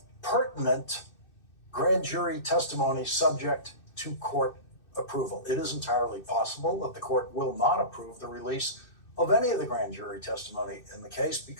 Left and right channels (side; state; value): right; late; 2.6 ms